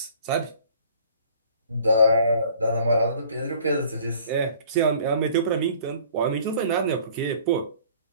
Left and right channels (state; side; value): inverted; both; correlation -0.53